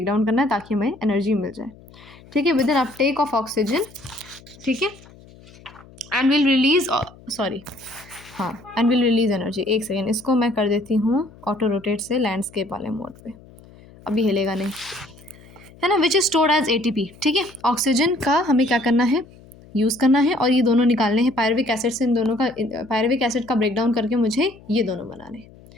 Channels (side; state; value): left; noise; hum, 23 dB below the sound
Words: डाउन करना है ताकि हमें एनर्जी मिल जाए। ठीक है, with an uptake of oxygen. ठीक है, and will release, and will release energy. एक सेकेंड, इसको मैं कर देती हूँ ऑटो रोटेट से लैंडस्केप वाले मोड पे, अभी हिलेगा नहीं, है ना। Which is stored as ATP। ठीक है, ऑक्सीजन का हमें क्या करना है, यूज़ करना है, और ये दोनों निकालने हैं पायरुविक एसिड से। इन दोनों का, पायरुविक एसिड का ब्रेकडाउन करके मुझे ये दोनों बनाने हैं।